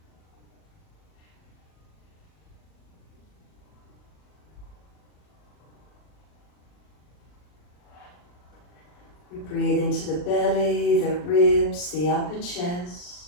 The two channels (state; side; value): late; right; 40 ms